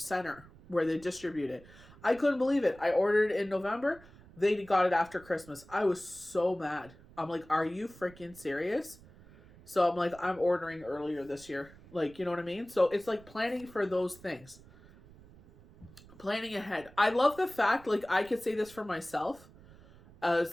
where they distribute it. I couldn't believe it. I ordered it in November. They got it after Christmas. I was so mad. I'm like, are you freaking serious? So I'm like, I'm ordering earlier this year. You know what I mean? So it's like planning for those things. Planning ahead. I love the fact, I could say this for myself,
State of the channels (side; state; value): right; noise; rumble, 22 dB below the sound